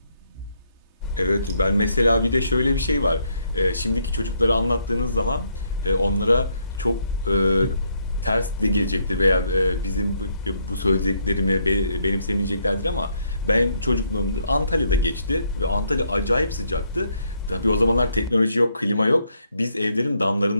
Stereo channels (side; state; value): both; inverted; correlation -0.73